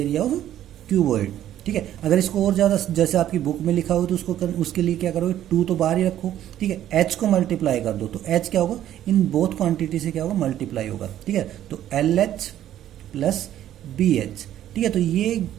of cuboid. ठीक है, अगर इसको और ज्यादा जैसे आपकी बुक में लिखा हो तो उसके लिए क्या करोगे, 2 तो बाहर ही रखो। ठीक है, एच को मल्टीप्लाई कर दो, तो एच क्या होगा, इन बोथ क्वांटिटी से क्या होगा, मल्टीप्लाई होगा। ठीक है, तो L H plus B H. ठीक है, तो ये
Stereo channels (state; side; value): quieter; left; 11.9 dB